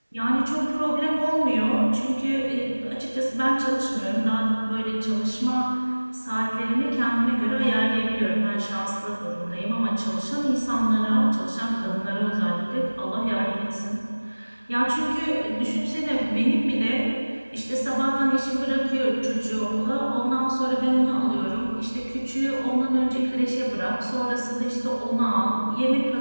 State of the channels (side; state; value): both; inverted; correlation -1.00